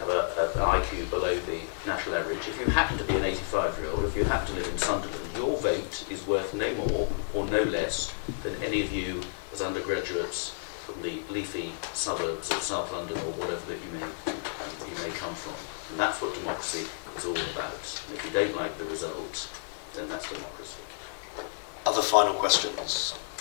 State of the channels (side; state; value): right; silent; digital silence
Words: an IQ below the national average, if you happen to be an 85-year-old, if you happen to live in Sunderland, your vote is worth no more or no less than any of you as undergraduates from the leafy suburbs of South London or whatever that you may come from. And that's what democracy is all about. And if you don't like the result, then that's democracy. Other final questions?